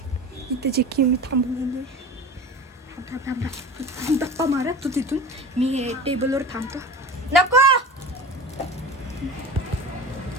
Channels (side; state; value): both; normal; correlation 0.34